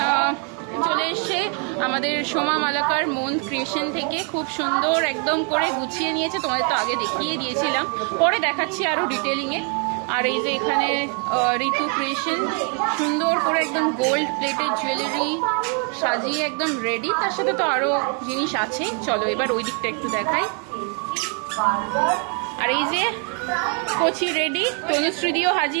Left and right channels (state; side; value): quieter; left; 39.0 dB